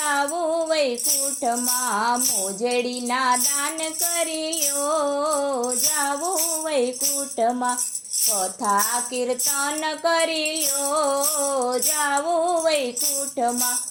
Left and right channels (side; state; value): both; identical; correlation 1.00